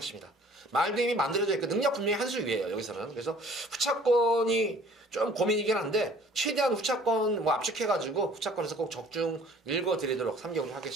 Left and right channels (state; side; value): normal; both; correlation 0.52